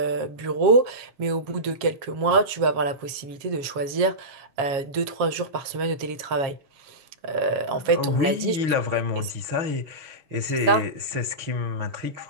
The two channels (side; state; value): left; late; 7.3 ms